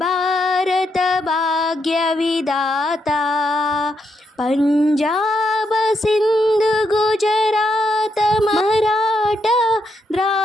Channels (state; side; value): normal; both; correlation 0.80